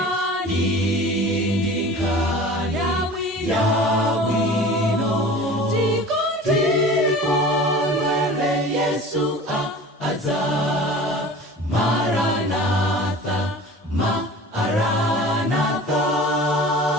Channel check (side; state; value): both; normal; correlation 0.40